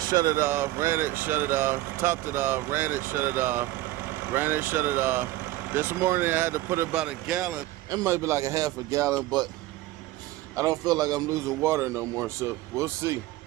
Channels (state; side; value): quieter; left; 16.9 dB